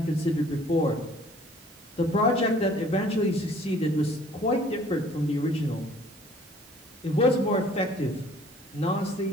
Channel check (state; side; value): noise; right; hiss, 25 dB below the sound